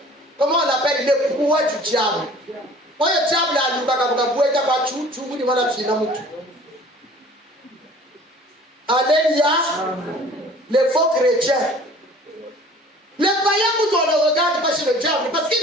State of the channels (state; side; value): normal; both; correlation 0.48